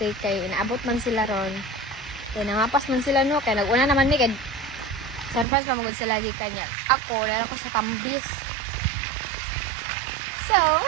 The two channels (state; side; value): drops out; left; at 5.5 s